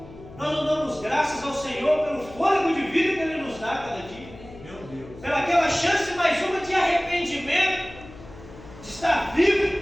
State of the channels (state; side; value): noise; left; hum, 18 dB below the sound